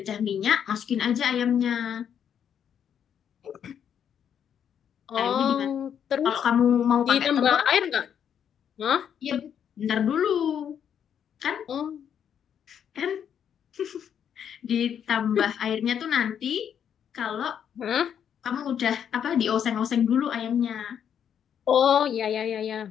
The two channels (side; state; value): right; quieter; 8.6 dB